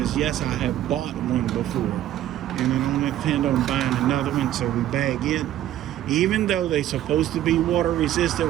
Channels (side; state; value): left; quieter; 12.7 dB